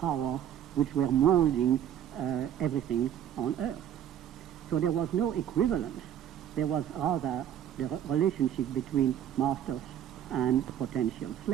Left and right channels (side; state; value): left; quieter; 10.2 dB